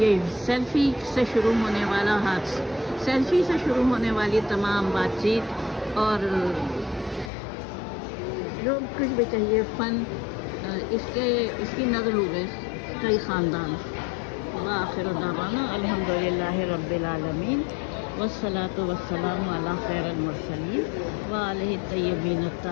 سیلفی سے شروع ہونے والا حادثہ، سیلفی سے شروع ہونے والی تمام بات چیت اور جو کچھ بھی چاہیے فن، اس کی نظر ہو گئے کئی خاندان. وآخر دعوانا الحمدللہ رب العالمین والصلاة والسلام علی خیر المرسلین وآلہ الطیبین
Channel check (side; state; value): right; drops out; at 7.3 s